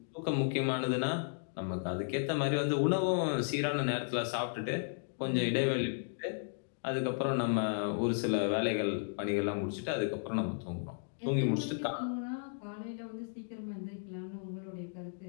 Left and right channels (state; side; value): silent; right; digital silence